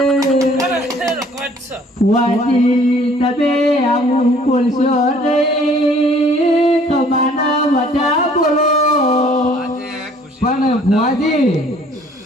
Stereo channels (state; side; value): normal; both; correlation 0.57